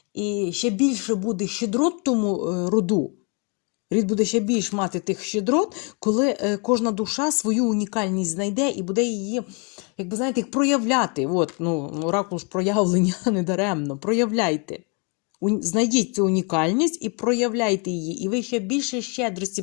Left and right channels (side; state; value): right; quieter; 33.8 dB